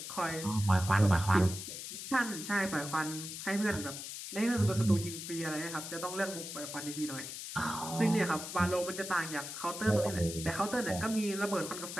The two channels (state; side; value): noise; left; hiss, 8 dB below the sound